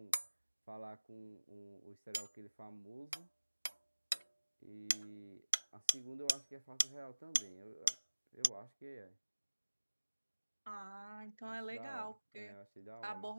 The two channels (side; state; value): both; inverted; correlation -1.00